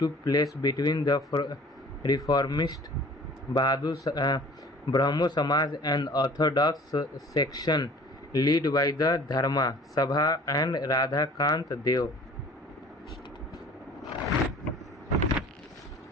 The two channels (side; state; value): both; normal; correlation 0.47